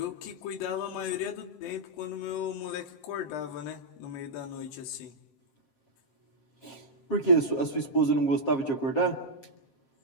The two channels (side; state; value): right; late; 7.4 ms